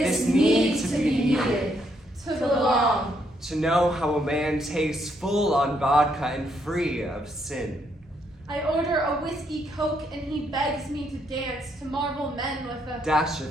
needs to be needed. To belong. To know how a man tastes full on vodka and free of sin. I order a whiskey coke and he begs me to dance to marvel men with a Dash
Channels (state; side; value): normal; both; correlation 0.74